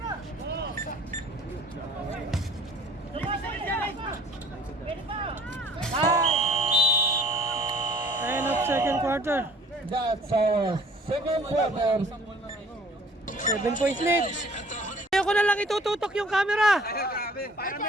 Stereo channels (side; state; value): both; normal; correlation 0.53